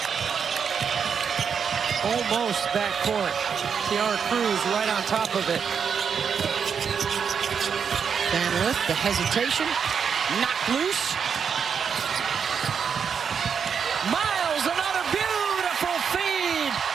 Almost backcourt. Tiara Cruz right on top of it. Van Lith, the hesitation, knocked loose. Miles, another beautiful feed.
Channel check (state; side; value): quieter; left; 6.8 dB